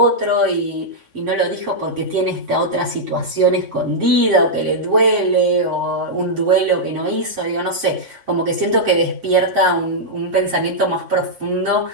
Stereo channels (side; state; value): left; late; 3.6 ms